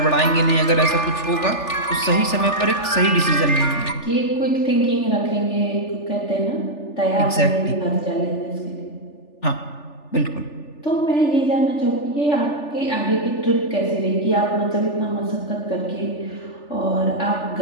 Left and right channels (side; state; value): right; late; 3.4 ms